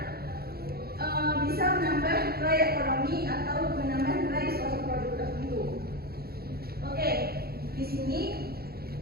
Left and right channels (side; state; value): left; late; 0.45 ms